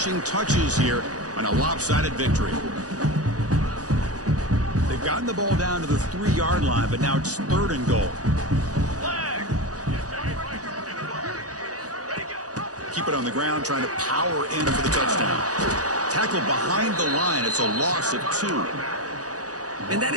touches here on a lopsided victory. They've gotten the ball down to the 3-yard line, but now it's 3rd and goal. Keep it on the ground, trying to power in for the touchdown. Tackled behind the line. It's a loss of 2. And that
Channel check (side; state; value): left; late; 0.67 ms